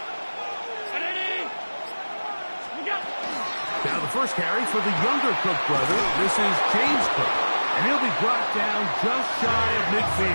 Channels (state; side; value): inverted; both; correlation -1.00